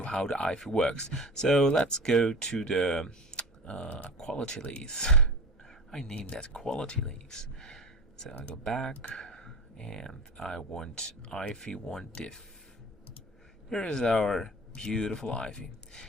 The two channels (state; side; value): normal; both; correlation 0.32